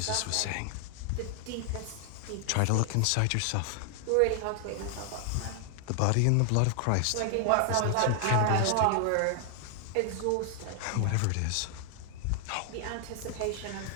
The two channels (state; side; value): different; both; correlation 0.00